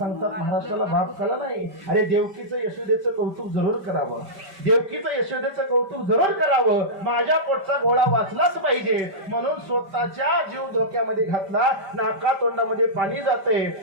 महाराष्ट्राला बाप कळला नाही. अरे देवकीचं यशोदेचं कौतुक जरूर करावं. देवकीचं यशोदेचं कौतुक जरूर करावं. माझ्या पोटचा गोळा वाचलाच पाहिजे म्हणून स्वतःच्या जीव धोक्यामध्ये घातला. नाका तोंडामध्ये पाणी जाते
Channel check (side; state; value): left; late; 5.1 ms